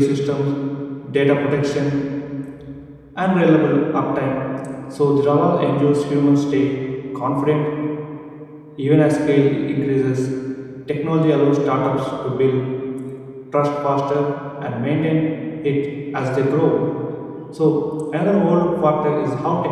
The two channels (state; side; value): identical; both; correlation 1.00